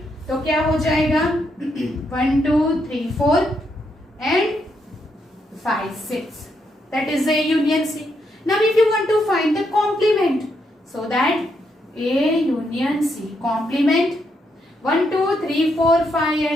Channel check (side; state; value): both; normal; correlation 0.79